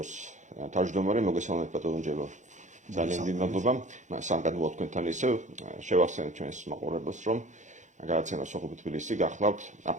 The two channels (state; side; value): late; left; 0.35 ms